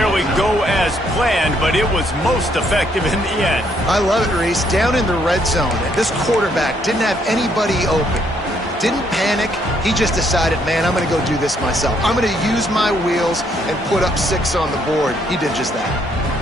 go as planned, but it was most effective in the end. I love it, Reese. Down in the red zone, and this quarterback didn't have anybody open. Didn't panic. He just decided, man, I'm going to go do this myself. I'm going to use my wheels and put up 6 on the board. He did just that.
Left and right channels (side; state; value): both; normal; correlation 0.70